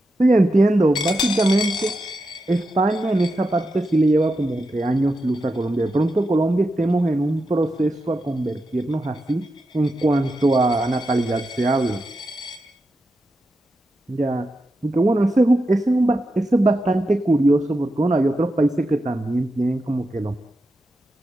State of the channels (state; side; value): normal; both; correlation 0.88